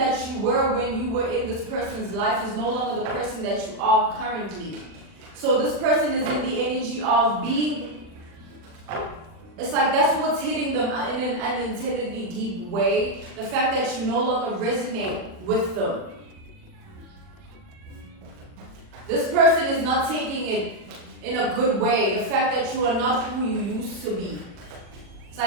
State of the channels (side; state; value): left; late; 40 ms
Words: you were when you were in this person's life is no longer the person that you are currently. So this person is in the energy of being, it's like that's what's hitting them in an unintendedly deep way. The fact that you no longer resonate with them. This person is not taking it in a good way. The fact that you are not who you used to be. It's